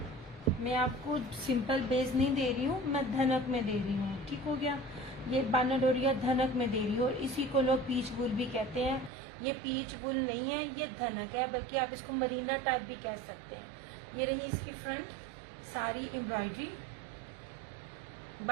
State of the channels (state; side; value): drops out; left; at 9.1 s